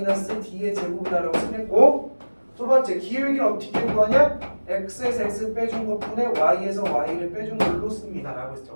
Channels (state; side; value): inverted; both; correlation -1.00